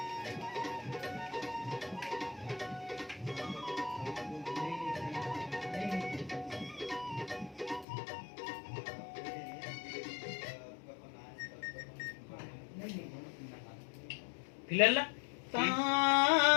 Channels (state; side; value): drops out; right; at 7.9 s